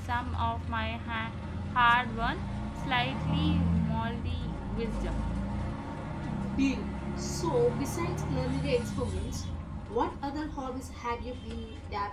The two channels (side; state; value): both; identical; correlation 1.00